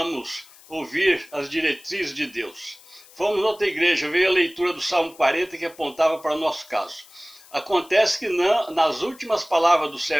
ouvir as diretrizes de Deus. Fomos a outra igreja, veio a leitura do Salmo 40 que apontava para o nosso caso. Acontece que nas últimas palavras do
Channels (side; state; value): left; noise; hiss, 24 dB below the sound